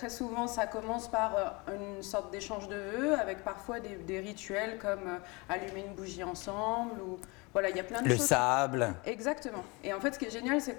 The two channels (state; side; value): quieter; right; 26.9 dB